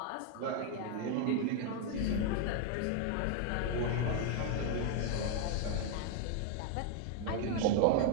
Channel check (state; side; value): different; both; correlation 0.00